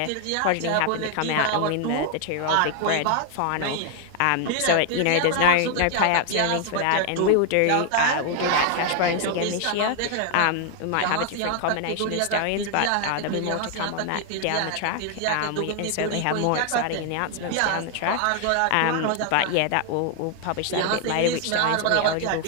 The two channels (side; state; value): both; different; correlation 0.00